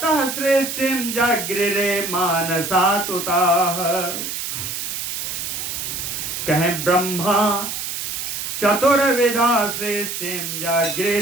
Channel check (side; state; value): right; noise; hiss, 4 dB below the sound